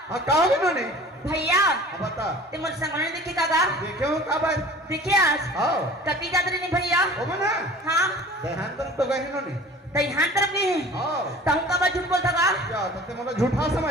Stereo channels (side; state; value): both; normal; correlation 0.44